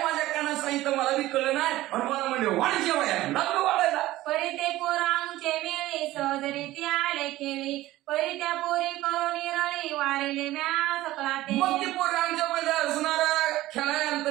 माझ्या कानात सांगितलं मला बी कळलं नाही. आणि मला म्हणले वाढ जेव्हा लागलो वाढायला. परी ते पोरांचे मेळे सहजरीती आले खेळी, परी त्या पोरी करून रळी वारिले म्या सकळा ते. मग ती पोरं आमच्या मध्ये असणारा खेळायला आलं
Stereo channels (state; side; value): quieter; left; 16.4 dB